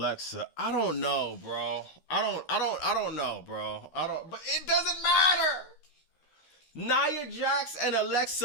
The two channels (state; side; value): late; right; 13 ms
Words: I don't know, bro. I don't know, bro. But it doesn't matter. Nia Jax and